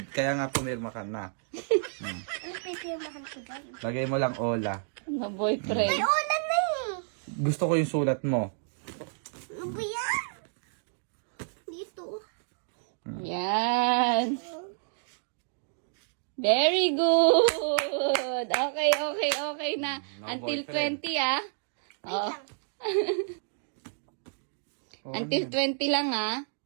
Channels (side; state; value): left; silent; digital silence